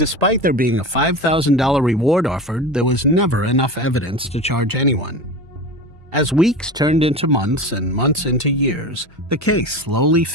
despite there being a $5,000 reward offered, there was never enough evidence to charge anyone. As weeks turned into months and months into years, the case slowly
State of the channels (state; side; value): normal; both; correlation 0.29